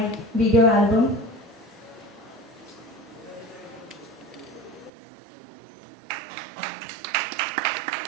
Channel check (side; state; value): left; drops out; at 4.9 s